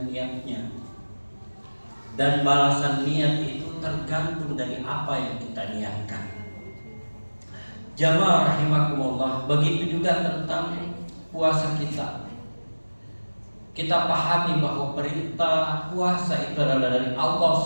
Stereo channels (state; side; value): inverted; both; correlation -1.00